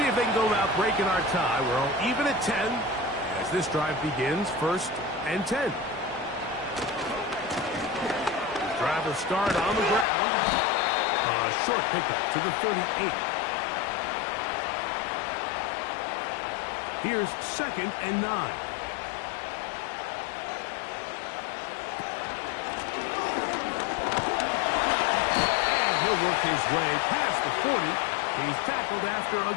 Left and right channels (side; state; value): right; drops out; at 10.1 s